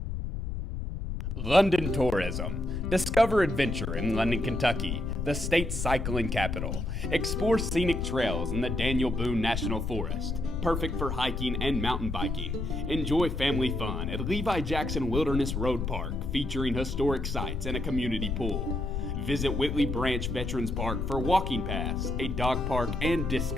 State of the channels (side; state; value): left; noise; rumble, 3 dB below the sound